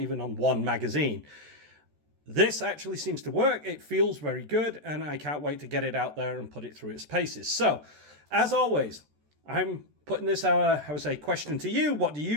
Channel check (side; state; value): left; late; 14 ms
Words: on one magazine. This actually seems to work. It feels very good, and I can't wait to get it out there and put it through its paces. So, as always, I'm putting this, I would say, question to you. What do